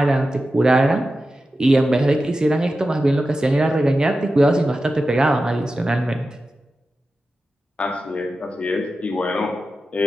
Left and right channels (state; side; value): normal; both; correlation 0.92